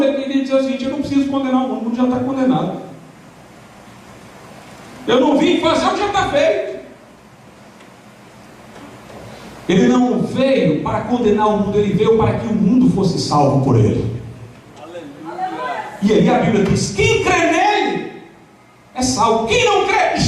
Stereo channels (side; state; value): both; identical; correlation 1.00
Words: ele queria dizer o seguinte: eu não preciso condenar o mundo já está condenado. Eu não vim fazer o que já está feito. Ele não veio para condenar o mundo, ele veio para que o mundo fosse salvo por ele. E aí a Bíblia diz: quem crê nele é salvo. Quem não crê